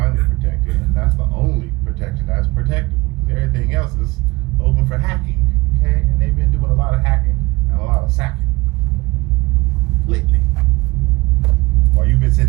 protected, and that's the only protection that's protectable, because everything else is open for hacking, okay? And they've been doing a lot of hacking and a lot of sacking lately. While you've been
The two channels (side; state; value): left; quieter; 22.6 dB